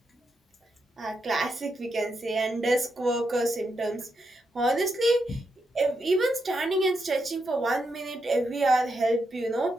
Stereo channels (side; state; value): both; normal; correlation 0.83